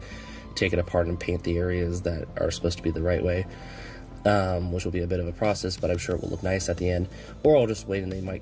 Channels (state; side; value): identical; both; correlation 1.00